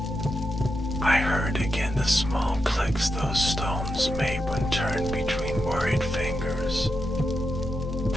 I heard again the small clicks those stones made when turned between worried fingers.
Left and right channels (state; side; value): normal; both; correlation 0.86